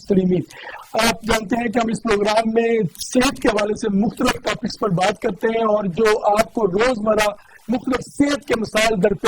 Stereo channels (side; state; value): both; identical; correlation 1.00